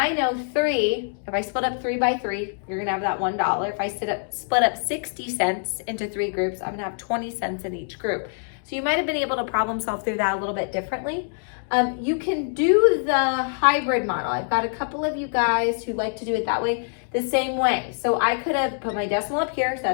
know 3, if I split up 3 by 3, you're gonna have that $1. If I split up 60 cents into 3 groups, I'm gonna have 20 cents in each group. So you might have been able to problem solve through that a little bit differently. You can do the hybrid model. I've got a couple of you guys who like to do it that way, the same way. So I could have put my decimal up here, so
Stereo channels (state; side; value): silent; right; digital silence